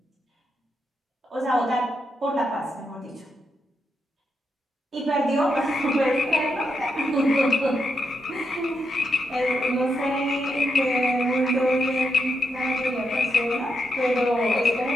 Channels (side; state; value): both; normal; correlation 0.82